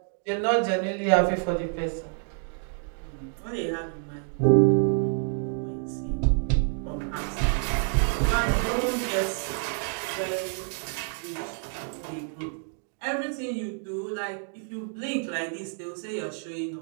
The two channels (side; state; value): left; silent; 56 dB below the other